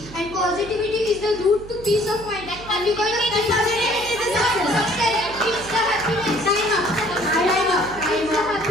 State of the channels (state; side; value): noise; right; hum, 16 dB below the sound